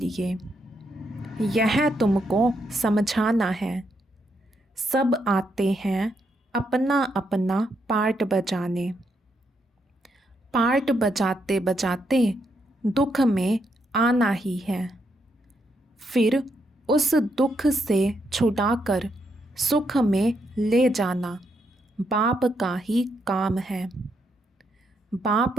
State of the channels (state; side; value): normal; both; correlation 0.78